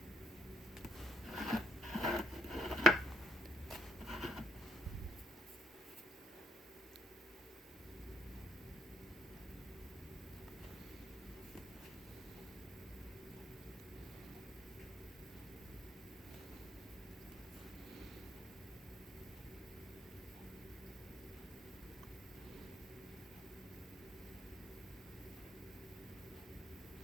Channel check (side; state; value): both; normal; correlation 0.69